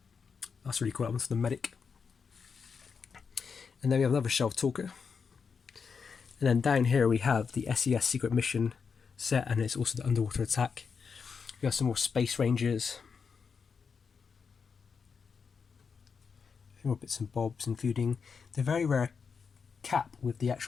That's really cool. That one's the medic. And then we have another shelf talker. And then down here we have the SES Secret Mission set, and it's also the Underwater Attack. We have some more Space Rangers. A few more bits and bobs, including the very rare cap with the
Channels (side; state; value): right; quieter; 5.8 dB